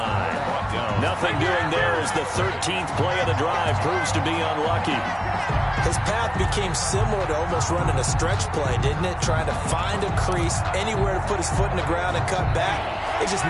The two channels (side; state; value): both; identical; correlation 1.00